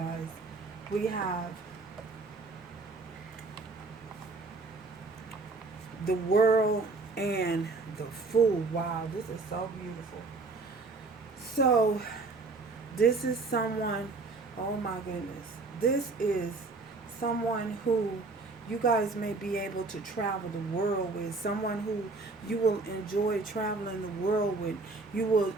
We have the World and the Fool. Wow, this is so beautiful. So this is someone, oh my goodness. This is someone who you guys may be able to travel the world with. Someone who you will enjoy traveling the world with. You will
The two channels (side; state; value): left; quieter; 3.7 dB